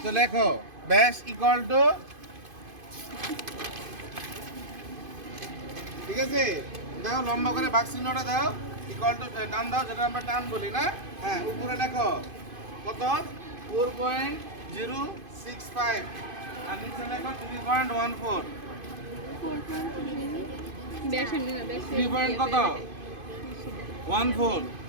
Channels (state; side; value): late; left; 2.5 ms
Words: তো লেখো ব্যাস ইকুয়াল টু, ঠিক আছে, দাও লম্বা করে ভাগ চিহ্নটা দাও, ইকুয়াল টু টান দাও, যেটা আমরা টান বলি না। হ্যাঁ, উপরে লেখো কত, 4.065, আর নিচে লেখো 3.14। 3 কত 14,